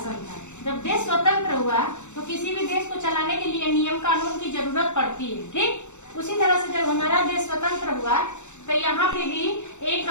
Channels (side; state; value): right; late; 0.83 ms